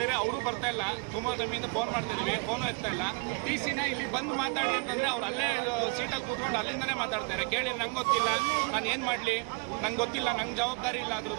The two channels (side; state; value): left; quieter; 34.1 dB